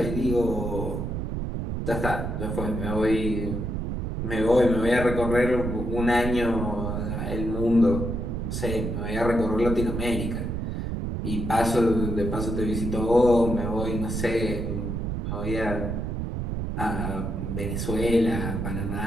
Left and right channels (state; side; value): noise; right; rumble, 2 dB below the sound